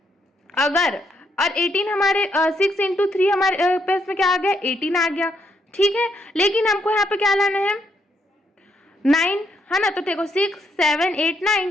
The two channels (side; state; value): both; normal; correlation 0.75